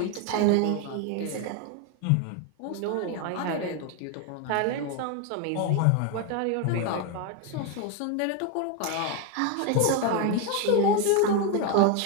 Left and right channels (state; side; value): different; both; correlation 0.01